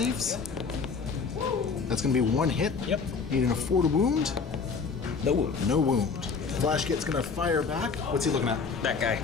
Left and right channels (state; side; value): quieter; right; 5.1 dB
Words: That's going to be 1 hit. Yep. Needing a 4 to wound. No wound. No wound. Flash kit's going to fire back. What's he looking at? That guy.